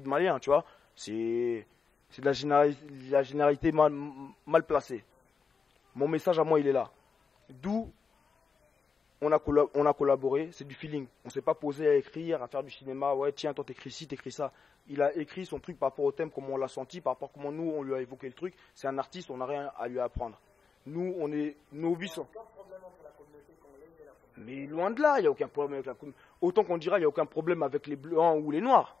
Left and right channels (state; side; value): quieter; right; 5.4 dB